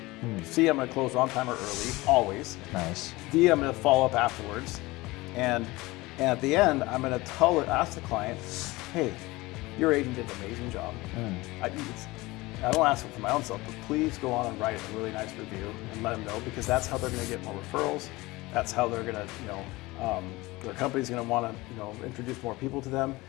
C, I'm going to close on time or early, always. Nice. D, I'm going to follow up afterwards. And at the end, I'm going to ask the client, hey, your agent did an amazing job. I don't ask it for my own self, but please go on and write a really nice review and let them know, because that's how they're going to get more referrals. That's how they're going to, their company's going to want to, introduce more people to them,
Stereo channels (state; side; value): quieter; right; 21.0 dB